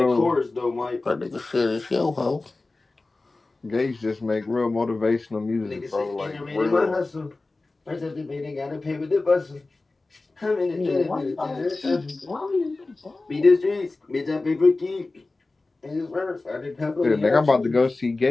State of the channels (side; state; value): right; quieter; 3.3 dB